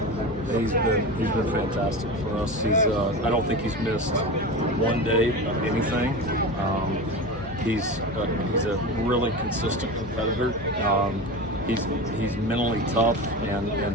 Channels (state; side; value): normal; both; correlation 0.27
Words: He's been fantastic for us. I don't think he's missed one day of anything. He's a really consistent competitor. He's mentally tough and